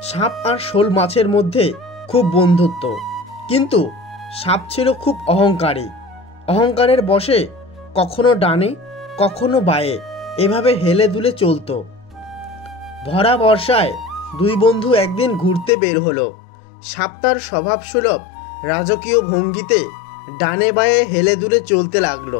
সাপ আর শোল মাছের মধ্যে খুব বন্ধুত্ব, কিন্তু সাপ ছিল খুব অহংকারী। অহংকারের বশে কখনো ডানে কখনো বায়ে এভাবে হেলে দুলে চলতো। ভরা বর্ষায় দুই বন্ধু একদিন ঘুরতে বের হলো। সাপ তার স্বভাবসুলভ রাজকীয় ভঙ্গিতে ডানে বায়ে হেলে দুলে চলতে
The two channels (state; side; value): drops out; right; at 15.7 s